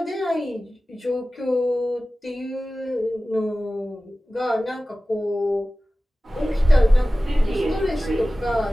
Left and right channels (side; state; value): both; normal; correlation 0.96